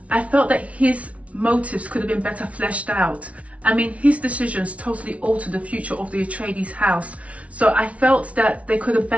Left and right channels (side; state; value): left; late; 0.065 ms